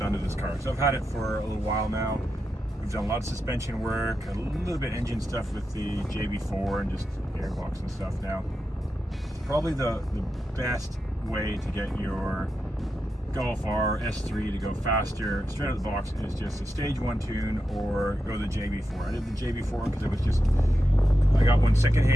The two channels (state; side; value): normal; both; correlation 0.88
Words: to this car. So I've had it for a little while now. We've done a lot of suspension work, a little bit engine stuff with the JB4 and just AIRBOX and stuff now. Probably the best way to get your GOLFR S3 to go faster straight out of the box is just a stage 1 tune or go the JB4. I did the JB4 because it was just, I got one